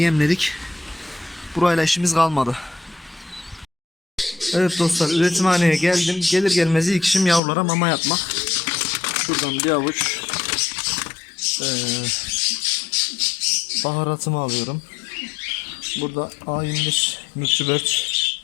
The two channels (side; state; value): right; drops out; at 7.4 s